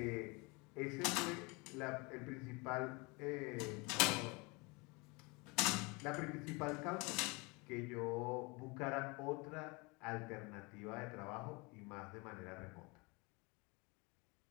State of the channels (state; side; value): quieter; right; 27.7 dB